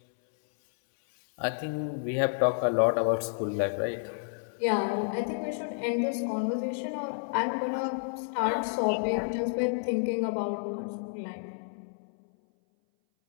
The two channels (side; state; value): right; silent; 58 dB below the other